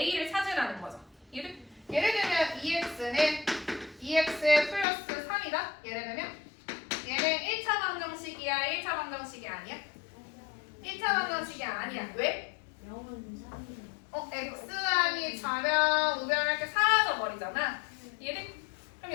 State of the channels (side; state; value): right; drops out; at 4.9 s